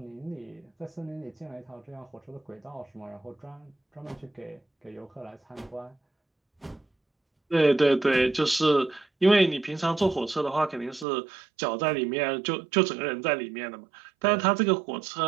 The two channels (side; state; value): left; drops out; at 11.1 s